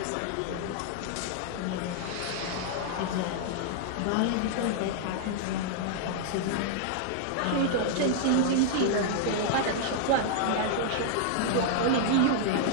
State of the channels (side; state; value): both; different; correlation -0.01